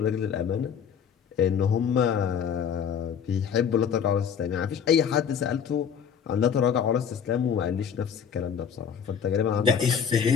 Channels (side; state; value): right; quieter; 7.5 dB